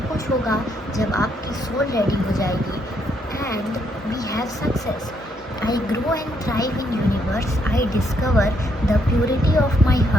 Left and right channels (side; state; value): both; normal; correlation 0.74